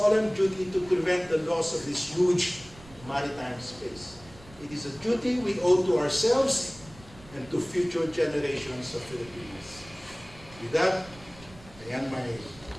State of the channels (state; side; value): noise; right; rumble, 21 dB below the sound